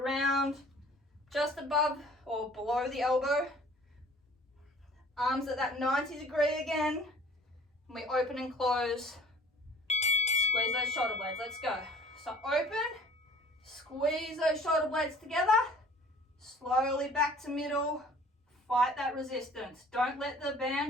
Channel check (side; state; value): both; normal; correlation 0.51